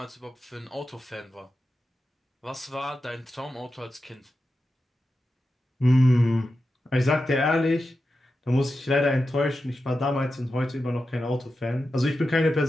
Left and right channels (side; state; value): both; normal; correlation 0.91